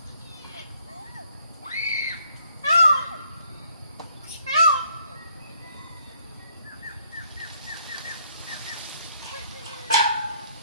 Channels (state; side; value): inverted; both; correlation -0.67